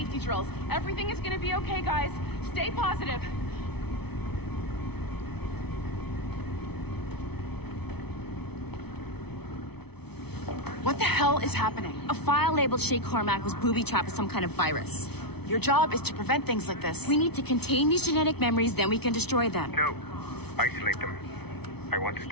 drills. Everything is gonna be okay, guys. Stay positive. What the hell is happening? A file labeled Shay Cormac was booby-trapped with some kind of virus. Your job is to prevent things like this. We need to contain these genetic memories, then we can destroy them. No. Isolate them. I want to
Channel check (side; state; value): right; late; 0.98 ms